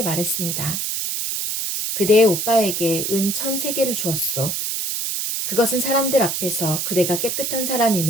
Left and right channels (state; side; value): noise; right; hiss, 2 dB below the sound